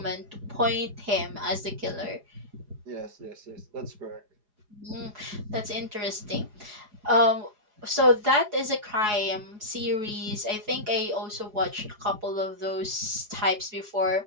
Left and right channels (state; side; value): late; left; 4.8 ms